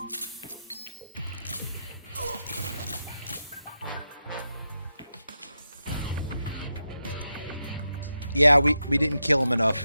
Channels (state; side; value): inverted; both; correlation -0.87